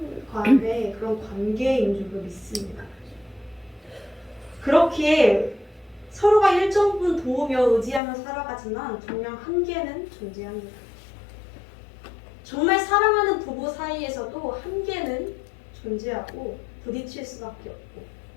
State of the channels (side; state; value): right; drops out; at 8.0 s